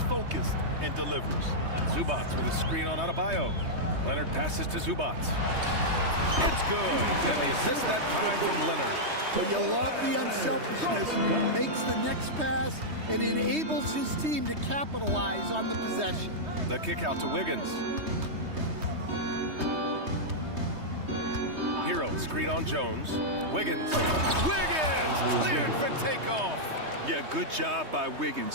focused and delivers. Zubats with a screen on Adebayo. Leonard passes to Zubats. It's good. And the assist that time from Leonard. But you love the unselfishness. Makes the next pass and enables his team to capitalize on the possession. The kick out to Wiggins. Hero, screen on Jones. Wiggins. Wiggins cleared for takeoff. Yeah, good job by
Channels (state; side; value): late; left; 3.2 ms